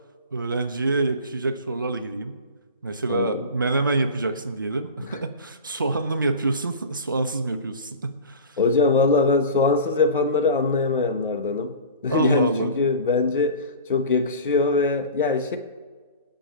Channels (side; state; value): both; inverted; correlation -0.35